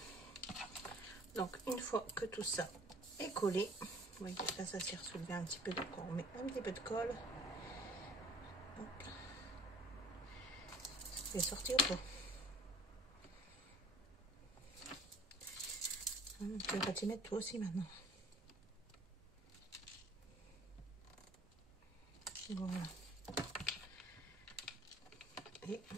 Donc une fois que tout ça est collé, vous voyez là ça s'est ressoulevé un petit peu, donc on met un petit peu de colle. Hop. Il est sorti ou pas? Tu vas t'y mettre toi aussi maintenant. Voilà. Et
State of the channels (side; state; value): both; normal; correlation 0.51